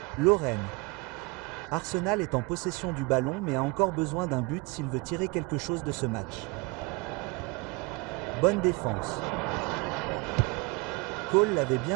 Lorraine. Arsenal est en possession du ballon mais a encore besoin d'un but s'il veut tirer quelque chose de ce match. Bonne défense. Cole l'avait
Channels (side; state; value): left; quieter; 26.4 dB